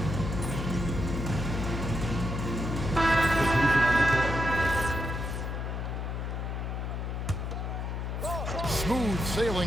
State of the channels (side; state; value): left; noise; hum, 3 dB below the sound